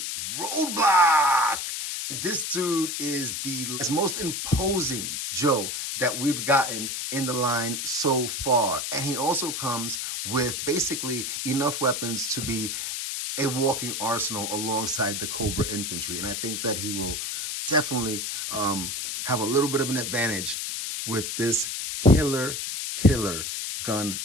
Roadblock. This dude is the most imposing Joe that we've gotten in the line so far. And he also comes with basically enough weapons to be a walking arsenal alongside the Cobra Infantry. And I think that he will definitely have a little bit of an advantage with this killer gun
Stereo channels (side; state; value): left; noise; hiss, 3 dB below the sound